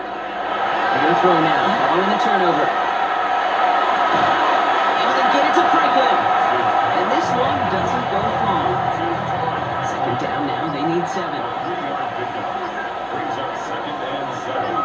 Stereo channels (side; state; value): both; identical; correlation 1.00